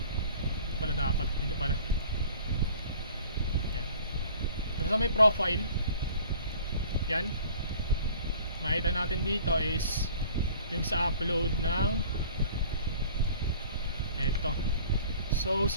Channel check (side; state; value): both; inverted; correlation -0.49